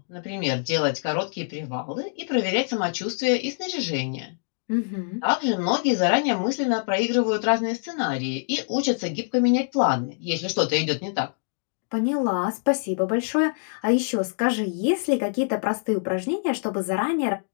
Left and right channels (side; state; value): right; silent; digital silence